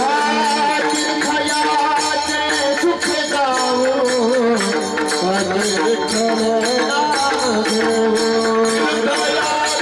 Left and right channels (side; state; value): both; identical; correlation 1.00